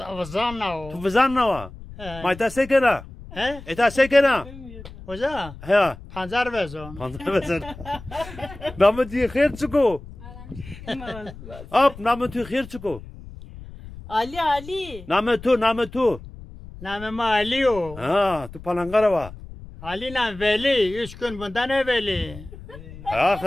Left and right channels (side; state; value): left; noise; rumble, 16 dB below the sound